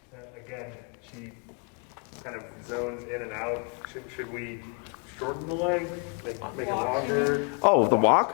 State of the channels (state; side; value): quieter; right; 35.6 dB